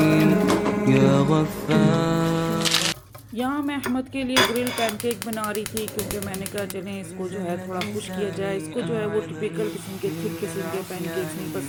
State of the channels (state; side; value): identical; both; correlation 1.00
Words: या गफ्फार। यहाँ मैं अहमद के लिए ग्रिल पैनकेक बना रही थी, क्योंकि मैंने कहा चलें इसको जो है थोड़ा खुश किया जाए। इसको जो है वो टिपिकल किस्म के थिक किस्म के पैनकेक्स नहीं